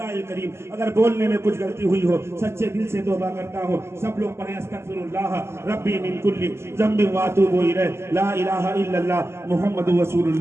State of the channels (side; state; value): left; late; 0.13 ms